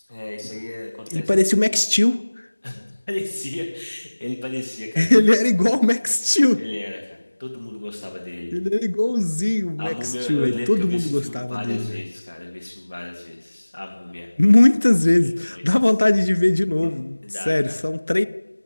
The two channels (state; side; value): inverted; both; correlation -1.00